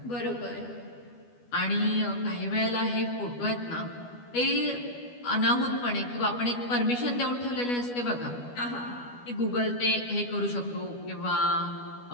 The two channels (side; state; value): right; late; 12 ms